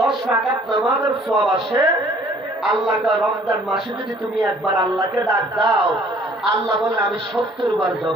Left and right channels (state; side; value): normal; both; correlation 0.56